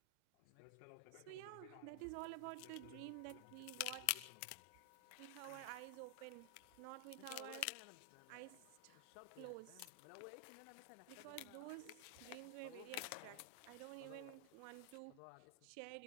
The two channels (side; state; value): both; different; correlation 0.00